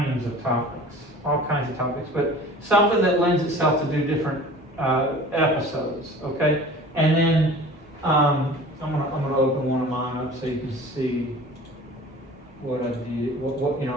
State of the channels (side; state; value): both; normal; correlation 0.43